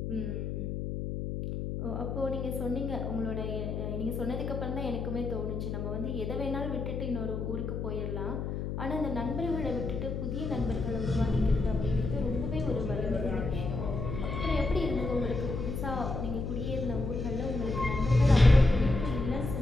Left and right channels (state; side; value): noise; left; hum, 3 dB below the sound